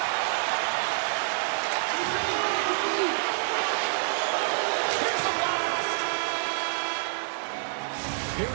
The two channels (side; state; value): left; silent; digital silence